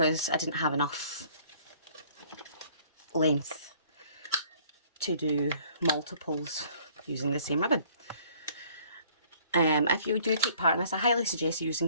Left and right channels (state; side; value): inverted; both; correlation -0.58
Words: I didn't have enough length to do multiples using the same ribbon. If you do take part in this, I highly suggest